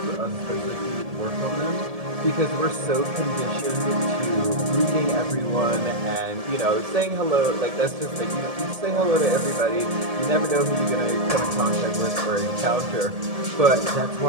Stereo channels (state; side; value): late; left; 1.8 ms